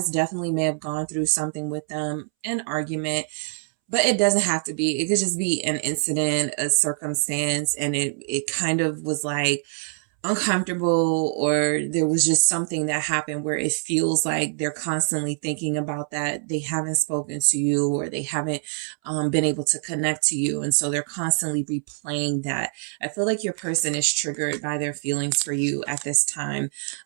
definitely may have gone through something with them, an argument. But it doesn't have to be. It could just be an incident, a circumstance, and it kind of was like uncomfortable, or there was just something that happened where it feels like they're constantly thinking about that. They haven't spoken to you, or they haven't been able to connect to you. And so they're constantly replaying that. I feel like your person is triggered by their feelings for you at this time.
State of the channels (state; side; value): silent; left; 62 dB below the other